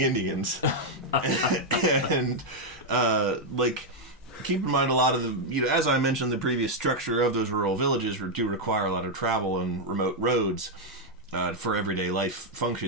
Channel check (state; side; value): normal; both; correlation 0.00